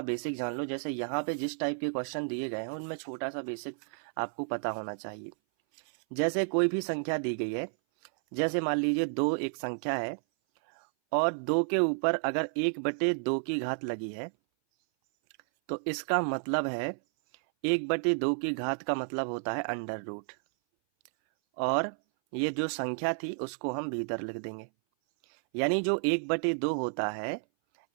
बेसिक जान लो। जैसे यहाँ पे जिस टाइप के क्वेश्चन दिए गए हैं उनमें छोटा सा बेसिक आपको पता होना चाहिए। जैसे कोई भी संख्या दी गई है, जैसे मान लीजिए 2 एक संख्या है और 2 के ऊपर अगर 1/2 की घात लगी है तो इसका मतलब है 1/2 की घात का मतलब होता है अंडर रूट, और ये जो संख्या थी उसको हम भीतर लिख देंगे। यानी जो 1/2 होता है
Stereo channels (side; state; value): left; silent; 57 dB below the other